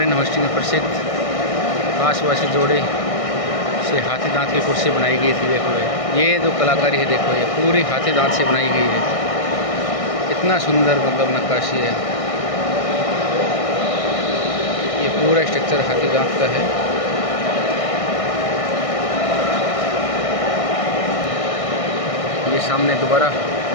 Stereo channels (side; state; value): right; late; 1.6 ms